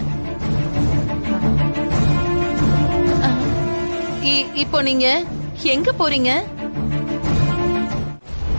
இப்போ நீங்க எங்க போறீங்க?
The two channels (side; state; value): both; inverted; correlation -1.00